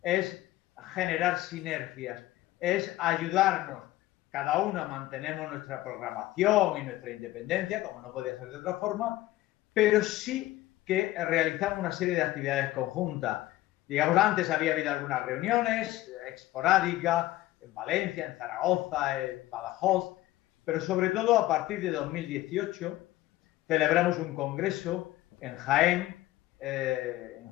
es generar sinergias, es ayudarnos. Cada uno mantenemos nuestra programación y nuestra independencia, como no podía ser de otra forma, pero sí que realizamos una serie de actividades conjuntas. Digamos, antes había habido algunas reuniones esporádicas en Valencia, en Zaragoza, en Badajoz, pero sobre todo a partir de 2018 celebramos un congreso en Jaén, en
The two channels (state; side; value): quieter; right; 16.4 dB